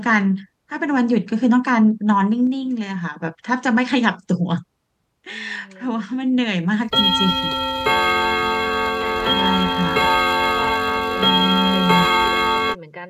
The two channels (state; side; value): identical; both; correlation 1.00